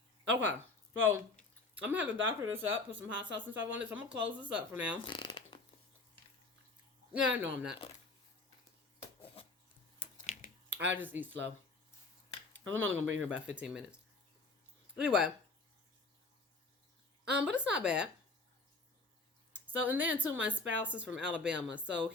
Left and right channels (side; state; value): right; quieter; 3.4 dB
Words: Okay, so I'm going to have to doctor this up, put some hot sauce and stuff on it. So I'm going to close this up for now. Yeah, no, I'm not. I just eat slow. I'm only going to be here about 15 minutes. Anyway, but it's not bad. So, and then too, my spouse is from Alabama, so